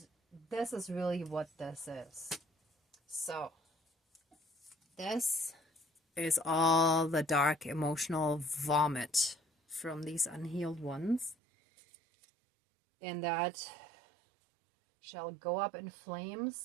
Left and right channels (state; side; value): drops out; left; at 11.4 s